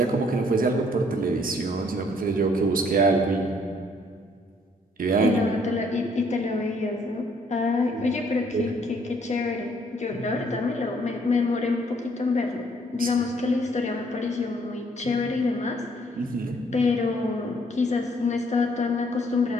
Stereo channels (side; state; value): both; normal; correlation 0.65